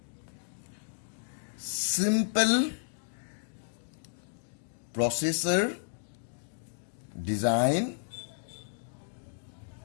simple processor design,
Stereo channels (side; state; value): right; silent; digital silence